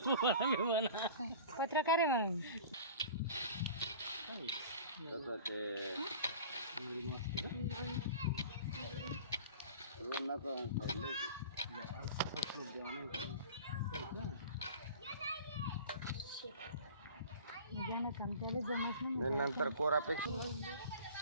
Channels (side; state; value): both; inverted; correlation -0.40